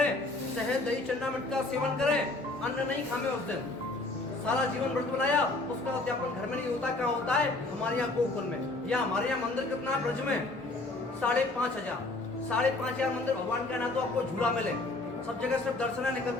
शहद दही चन्ना मिर्च का सेवन करें, अन्न नहीं खामे उस दिन, सारा जीवन व्रत बनाया, उसका उद्यापन घर में नहीं होता। क्या होता है? हमारे यहाँ गोकुल में। या हमारे यहाँ मंदिर कितना है ब्रज में? 5,500 मंदिर भगवान का ना तो आपको झूला मिले, सब जगह सिर्फ दर्शन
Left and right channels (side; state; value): right; quieter; 3.0 dB